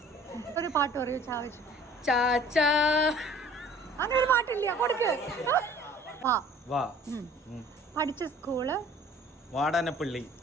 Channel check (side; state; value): both; normal; correlation 0.50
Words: ഒരു പാട്ട് പറയൂ. ചാവച്ചു ചാച്ചാ. അങ്ങനെ ഒരു പാട്ടില്ല. കൊടുക്ക്. പഠിച്ച സ്കൂള് വാടാനപ്പള്ളി